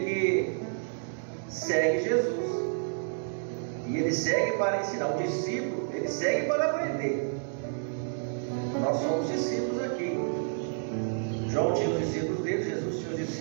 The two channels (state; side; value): silent; left; digital silence